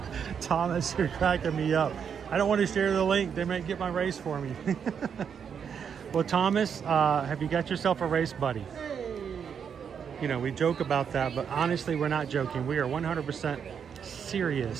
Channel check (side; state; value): left; quieter; 7.3 dB